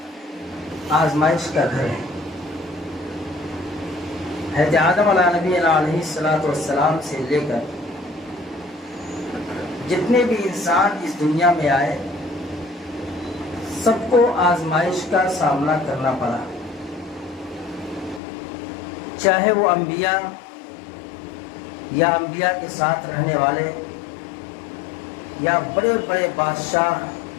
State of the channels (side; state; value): right; drops out; at 18.2 s